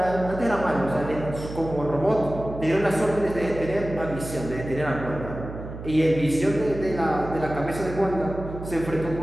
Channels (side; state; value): right; noise; hum, 10 dB below the sound